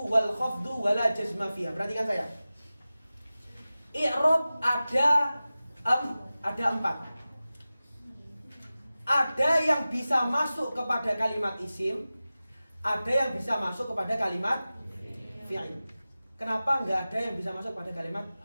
wal khafdu wala jazma fiha. Perhatikan saya. I'rab ada 4. Ada yang bisa masuk kepada kalimat isim, ada yang bisa masuk kepada kalimat fi'il. Kenapa nggak ada yang bisa masuk pada kalimat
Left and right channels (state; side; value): inverted; both; correlation -0.96